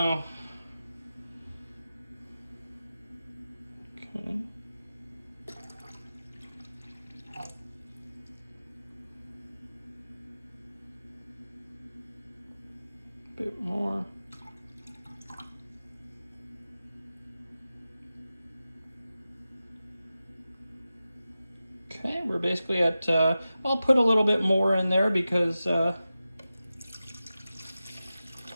Okay. Bit more. Okay, we're basically at, I'll put a little bit more in there because,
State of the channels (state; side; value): inverted; both; correlation -0.94